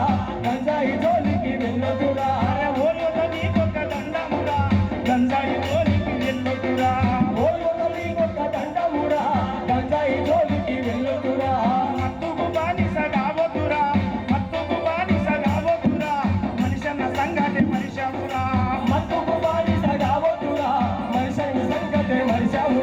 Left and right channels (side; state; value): both; identical; correlation 1.00